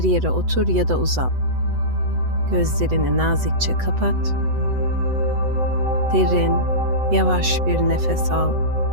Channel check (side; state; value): left; late; 8.0 ms